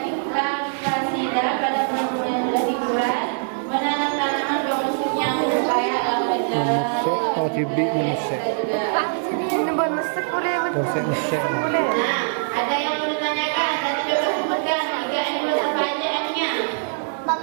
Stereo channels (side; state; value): left; silent; digital silence